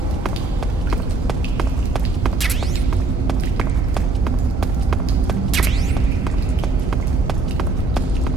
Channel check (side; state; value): left; quieter; 3.5 dB